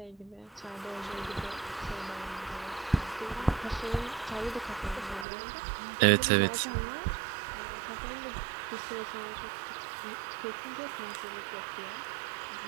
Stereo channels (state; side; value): drops out; left; at 5.2 s